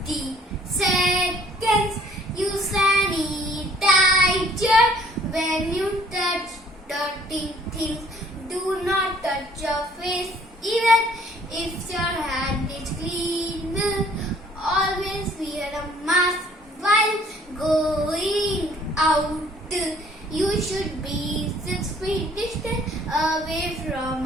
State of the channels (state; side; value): normal; both; correlation 0.58